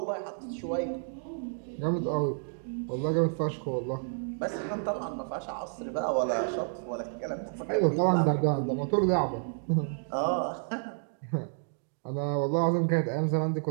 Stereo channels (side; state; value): left; silent; digital silence